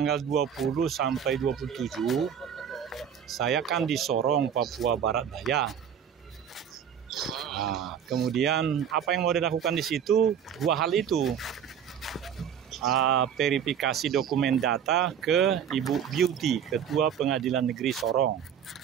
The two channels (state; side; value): quieter; left; 8.4 dB